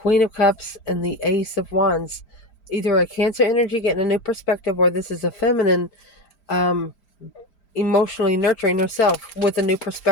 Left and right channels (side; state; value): right; late; 5.0 ms